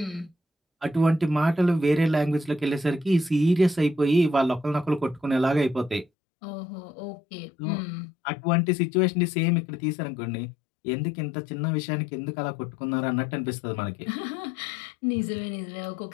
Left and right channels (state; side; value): drops out; right; at 6.1 s